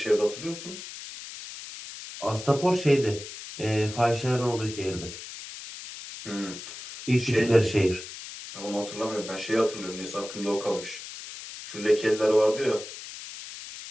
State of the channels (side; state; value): left; noise; hiss, 12 dB below the sound